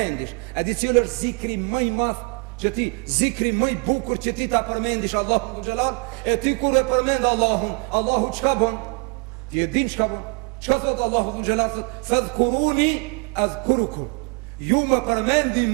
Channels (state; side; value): quieter; left; 33.7 dB